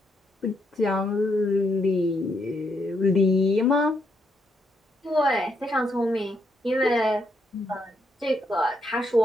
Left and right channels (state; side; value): normal; both; correlation 0.77